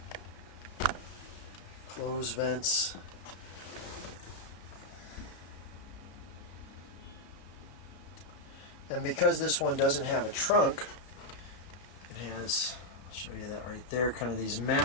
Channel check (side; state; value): right; late; 33 ms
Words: Closed vents. And because this one doesn't have a trunk, it has, I'll show you that right there, kind of these